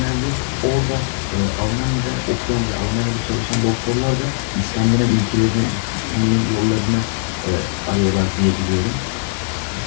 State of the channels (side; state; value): right; silent; digital silence